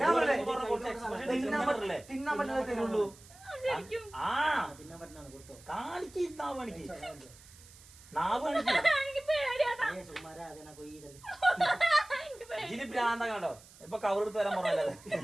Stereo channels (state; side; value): noise; right; hiss, 22 dB below the sound